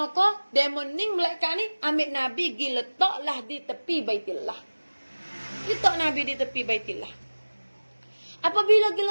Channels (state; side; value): inverted; both; correlation -1.00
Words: Demon ni malaikat ni ambil Nabi pergi letaklah di tepi Baitillah. Letak Nabi di tepi Baitillah. Apabila pergi